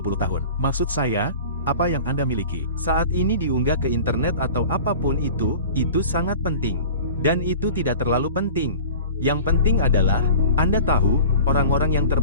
tahun. Maksud saya, apa yang Anda miliki saat ini diunggah ke internet atau apapun itu sangat penting. Dan itu tidak terlalu penting. Yang penting adalah, Anda tahu, orang-orang yang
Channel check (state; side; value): inverted; both; correlation -0.39